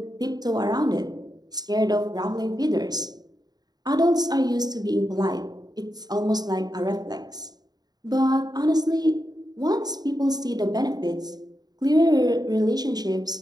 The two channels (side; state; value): left; late; 0.19 ms